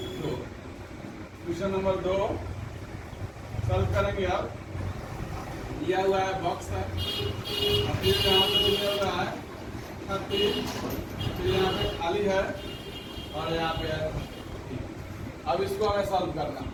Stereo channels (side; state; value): both; identical; correlation 1.00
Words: 2। Question number 2 solve करेंगे। अब दिया हुआ है बॉक्स है, फिर यहाँ पे दिया हुआ है 36, फिर यहाँ पे खाली है और यहाँ पे है। अब इसको हमें सॉल्व करना।